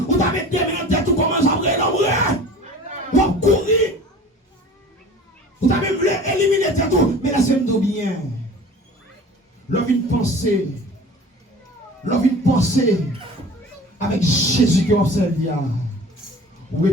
ou t'as mis des mains en tête, tu commences à brûler ou à courir. Vous avez voulu éliminer tout, mais là c'est bien. L'homme une pensée avec Jésus qui observe. Vous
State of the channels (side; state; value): both; normal; correlation 0.42